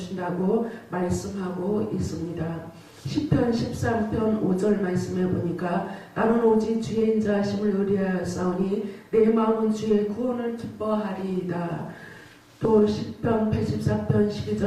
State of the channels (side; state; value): both; identical; correlation 1.00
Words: 말씀하고 있습니다. 시편 13편 5절 말씀에 보니까 나는 오직 주의 인자하심을 의뢰하였사오니 내 마음은 주의 구원을 기뻐하리이다. 또 시편 84편